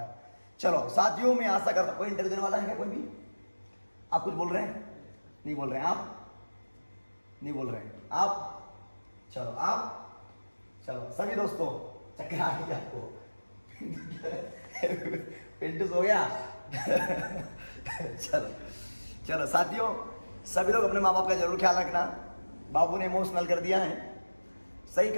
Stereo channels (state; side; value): inverted; both; correlation -1.00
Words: चलो साथियों, मैं आशा करता हूं, कोई इंटरव्यू देने वाला है क्या? कोई भी? आप कुछ बोल रहे हैं? नहीं बोल रहे हैं आप? नहीं बोल रहे हैं आप? चलो आप, चलो सभी दोस्तों, चक्कर आ गई आपको? पिंटू हो गया? चलो चलो साथियों, सभी लोग अपने माँ बाप का जरूर ख्याल रखना। बाबू ने इमोशनल कर दिया है, सही